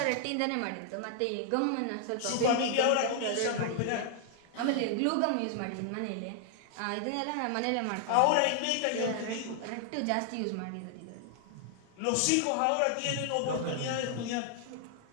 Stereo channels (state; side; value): different; both; correlation 0.00